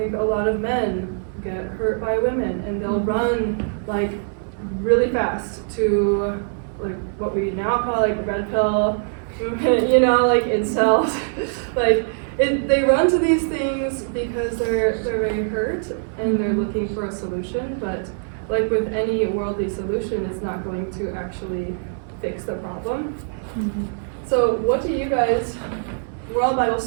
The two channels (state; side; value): silent; left; 64 dB below the other